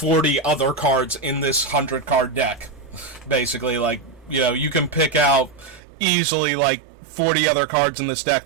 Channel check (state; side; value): drops out; left; at 5.8 s